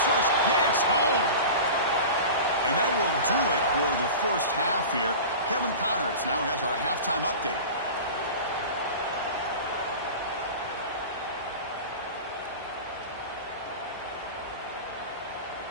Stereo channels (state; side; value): inverted; both; correlation -0.33